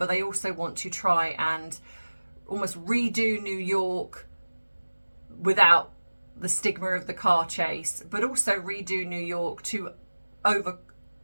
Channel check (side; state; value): both; inverted; correlation -1.00